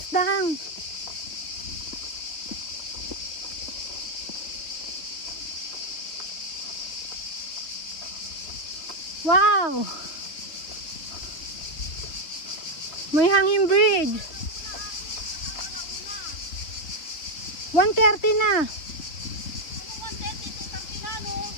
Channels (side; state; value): right; late; 3.4 ms